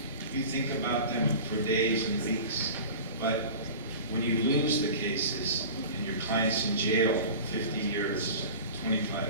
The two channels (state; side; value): inverted; both; correlation -0.35